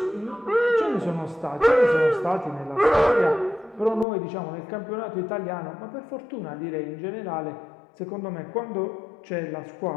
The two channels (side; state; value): right; drops out; at 4.0 s